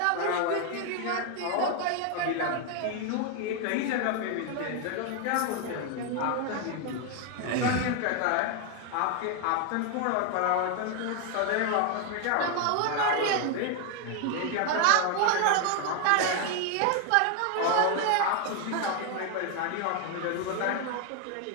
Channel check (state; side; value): different; both; correlation 0.01